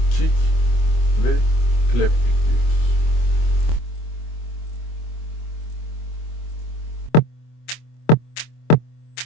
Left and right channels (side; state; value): right; late; 25 ms